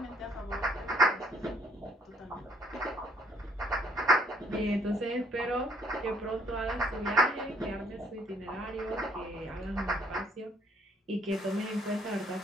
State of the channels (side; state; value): both; normal; correlation 0.65